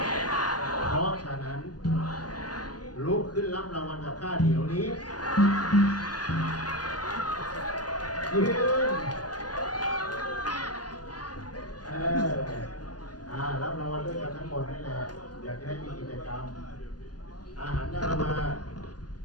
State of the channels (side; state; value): right; late; 0.69 ms